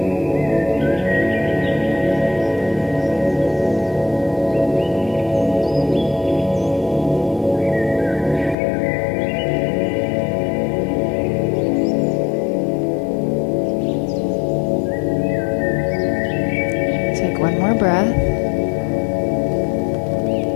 One more breath.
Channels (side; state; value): right; drops out; at 8.6 s